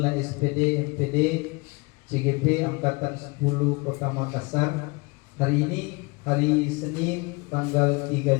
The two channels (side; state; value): right; quieter; 27.4 dB